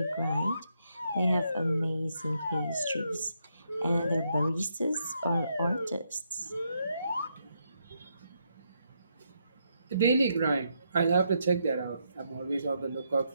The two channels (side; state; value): both; inverted; correlation -0.79